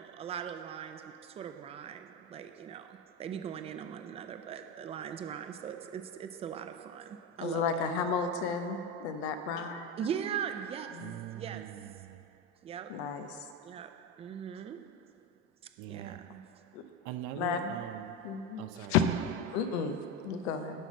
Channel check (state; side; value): normal; both; correlation 0.16